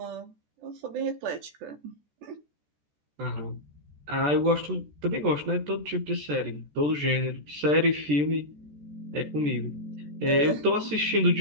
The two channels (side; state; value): left; late; 14 ms